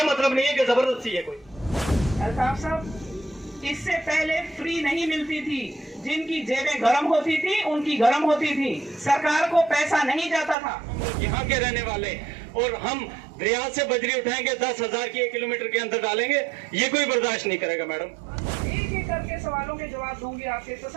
मतलब नहीं है कि जबरदस्ती है कोई। अल्ताफ साहब, इससे पहले फ्री नहीं मिलती थी, जिनकी जेबें गर्म होती थी उनकी गर्म होती थी, सरकार को पैसा नहीं जाता था। यहाँ के रहने वाले और हम दरिया से बजरी उठाएंगे 10,000 की 1 किलोमीटर के अंदर डालेंगे, ये कोई बर्दाश्त नहीं करेगा मैडम। एक एक करके सवालों के जवाब दूंगी आपसे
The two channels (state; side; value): drops out; left; at 10.6 s